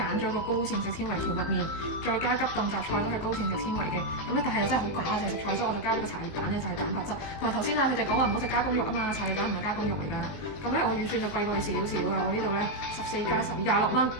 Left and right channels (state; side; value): late; right; 19 ms